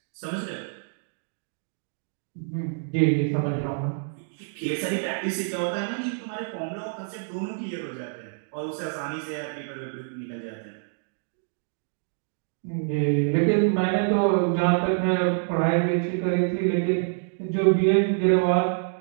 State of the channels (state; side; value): silent; left; digital silence